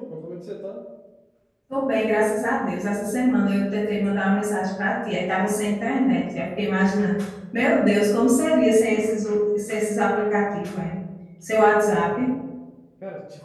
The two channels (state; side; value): identical; both; correlation 1.00